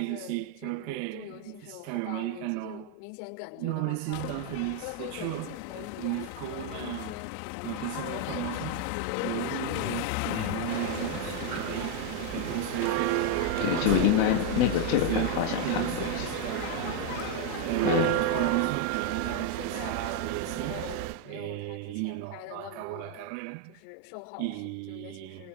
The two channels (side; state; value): both; different; correlation 0.01